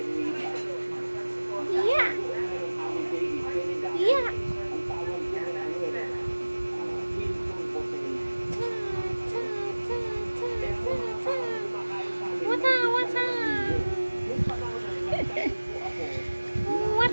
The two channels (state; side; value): inverted; both; correlation -1.00